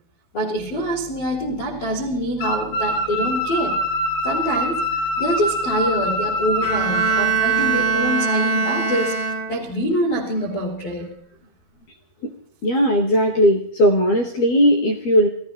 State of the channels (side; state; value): right; late; 12 ms